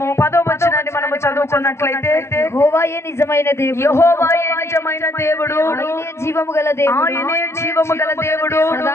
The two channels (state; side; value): late; right; 0.13 ms